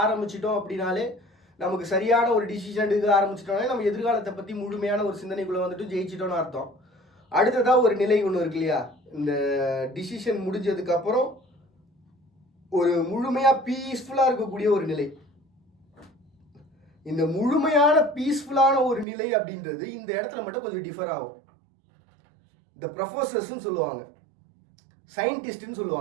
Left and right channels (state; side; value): drops out; left; at 19.1 s